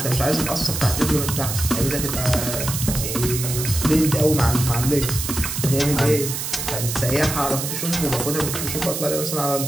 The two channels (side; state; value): right; noise; hiss, 4 dB below the sound